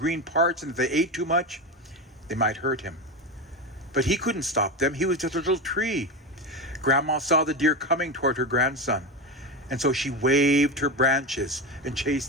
parts, and if they ate too much, they might hurt him. But he couldn't stop them. He was just a little tree. Grandma saw the deer coming toward her grandson, and so she waved her branches and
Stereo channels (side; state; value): both; normal; correlation 0.19